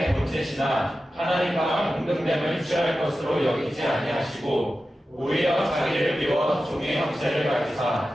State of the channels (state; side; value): normal; both; correlation 0.93